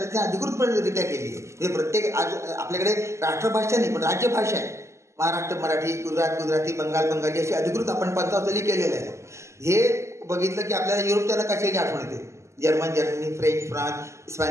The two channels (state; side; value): late; left; 0.13 ms